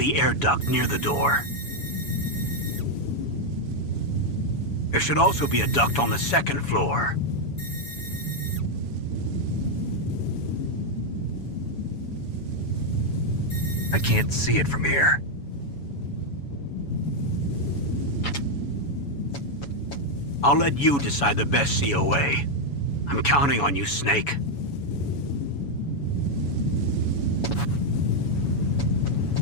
air duct near the door? There should also be a duct on the second floor. I can't see it from here. I'll let you decide the best COA. I'm counting on you, Snake.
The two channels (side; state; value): right; late; 7.1 ms